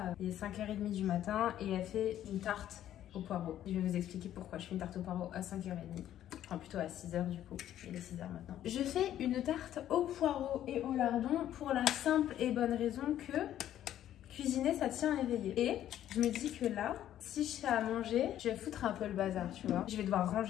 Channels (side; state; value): right; quieter; 11.7 dB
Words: il est 5h30 du matin et elle fait une tarte au poireau. Je vais vous expliquer pourquoi je fais une tarte au poireau à 5h30. Enfin plutôt à 6h du coup, il est 6h maintenant. Je fais une tarte au poireau et au lardon pour la simple et bonne raison que cuisiner ça tient éveillé. Et je me dis que là, si je fais à manger, je vais foutre un peu le bazar, tu vois. Je vais devoir